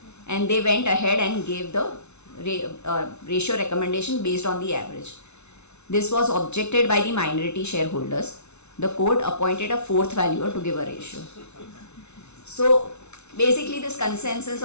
and they went ahead and gave the ratio recommendation based on the average. This was objected by the minority shareholders. The court appointed a fourth valuer to give a ratio. So basically this consensus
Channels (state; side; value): late; right; 0.81 ms